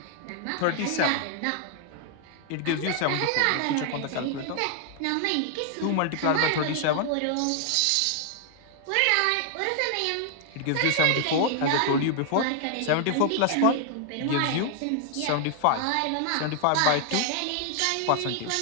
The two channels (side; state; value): both; different; correlation 0.00